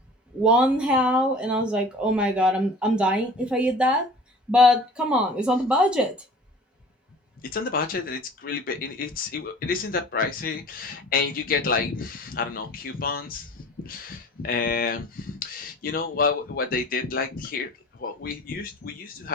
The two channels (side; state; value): both; normal; correlation 0.44